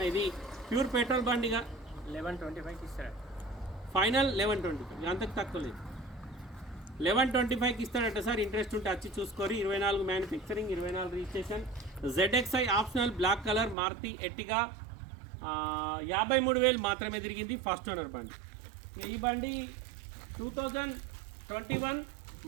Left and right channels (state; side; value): drops out; left; at 13.8 s